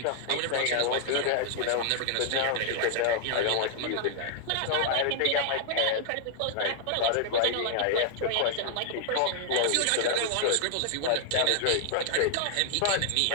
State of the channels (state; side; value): different; both; correlation 0.00